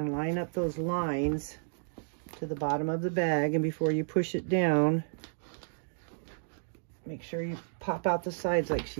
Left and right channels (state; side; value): silent; left; digital silence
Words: line up those lines to the bottom of the bag. And before you push it down, make sure you pop out the sides like she